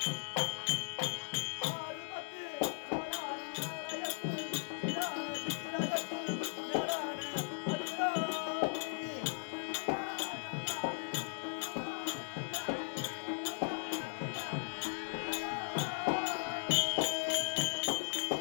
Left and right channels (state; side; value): silent; right; digital silence